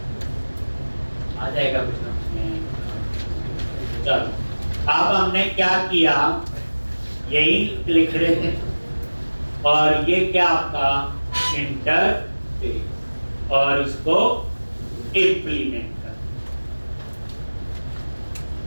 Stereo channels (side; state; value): both; inverted; correlation -1.00